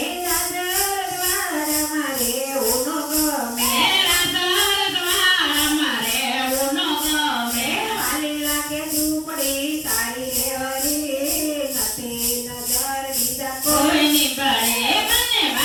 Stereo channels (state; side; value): identical; both; correlation 1.00